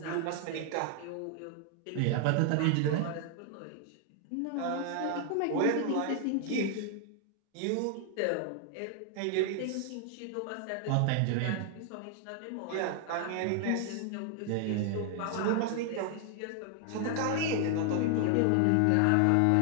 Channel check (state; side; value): different; both; correlation 0.00